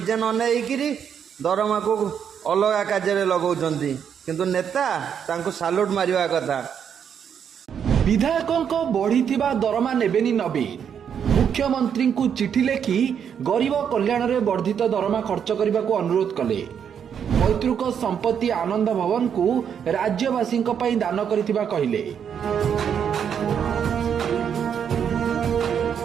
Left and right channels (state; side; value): quieter; left; 8.0 dB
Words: न नहीं दरमा को अलग कार्य लगाउछन्ति किंतु नेता तांको साल्यूट मारिवा कथा। विधायकों बढ़ी दरमा नेबेनी नवीन मुख्यमंत्री को चिठी लेखि गरीब कल्याण रे वर्धित दरमा खर्च करने को अनुरोध कले। पैतृक संपत्ति आनंद भवन को राज्यवासी दान करिथिबा कहिले।